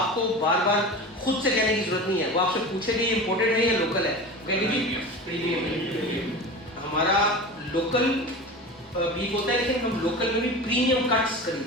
बार बार खुद से कहने की जरूरत नहीं है। वो आपसे पूछेगी इम्पोर्टेड है या लोकल है, कहेंगे जी प्रीमियम है। हमारा लोकल बीफ होता है, लेकिन हम लोकल में भी प्रीमियम कट्स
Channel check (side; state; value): both; normal; correlation 0.31